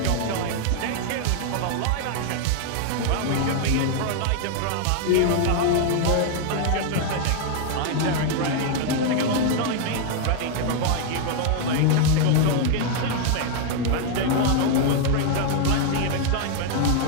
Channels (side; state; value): both; different; correlation 0.00